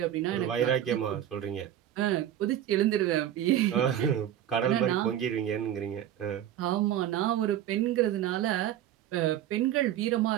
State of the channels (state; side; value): quieter; left; 11.2 dB